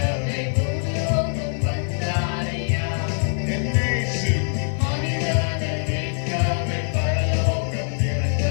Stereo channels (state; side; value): silent; right; digital silence